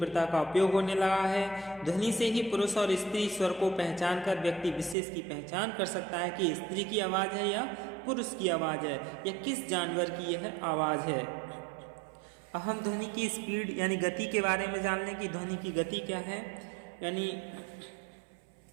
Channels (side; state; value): left; drops out; at 5.0 s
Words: का उपयोग होने लगा है। ध्वनि से ही पुरुष और स्त्री स्वर को पहचान कर व्यक्ति विशेष की पहचान कर सकता है कि स्त्री की आवाज़ है या पुरुष की आवाज़ है या किस जानवर की यह आवाज़ है। अब हम ध्वनि की स्पीड यानी गति के बारे में जान लें कि ध्वनि की गति क्या है। यानी